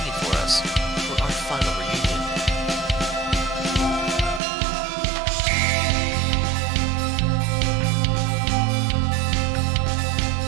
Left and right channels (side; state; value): left; drops out; at 4.4 s